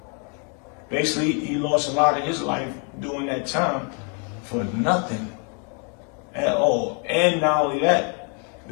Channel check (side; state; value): right; quieter; 38.9 dB